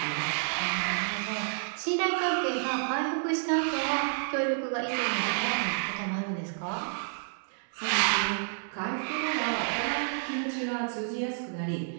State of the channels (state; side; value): silent; left; 58 dB below the other